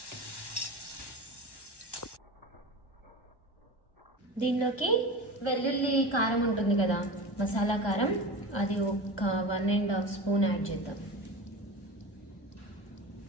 దీనిలోకి వెల్లుల్లి కారం ఉంటుంది కదా, మసాలా కారం, అది ఒక 1.5 స్పూన్ యాడ్ చేద్దాం.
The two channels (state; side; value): late; right; 1.1 ms